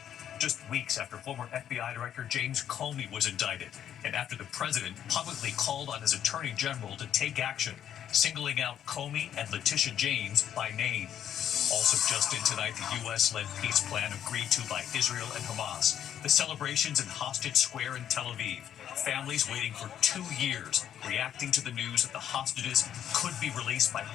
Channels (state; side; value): quieter; right; 10.0 dB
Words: Just weeks after former FBI Director James Comey was indicted, and after the president publicly called on his attorney general to take action, singling out Comey and Letitia James by name. Also just in tonight, the U.S.-led peace plan agreed to by Israel and Hamas. The celebrations in Hostage Square in Tel Aviv. Families waiting for 2 years, reacting to the news that the hostages could be released by